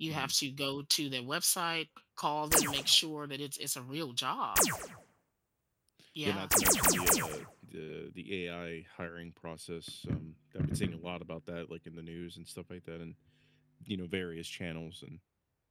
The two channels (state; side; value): identical; both; correlation 1.00